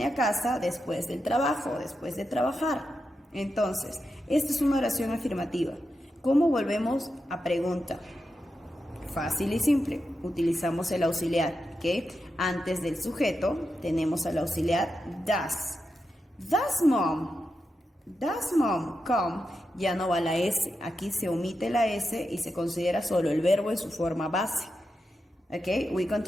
a casa después del trabajo, después de trabajar. Entonces, esta es una oración afirmativa. ¿Cómo volvemos a pregunta? Fácil y simple, utilizamos el auxiliar, ¿ok? Antes del sujeto tenemos al auxiliar does. Does mom come? Ya no va la S, aquí se omite la S y se considera solo el verbo en su forma base. ¿Ok?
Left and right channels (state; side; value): normal; both; correlation 0.88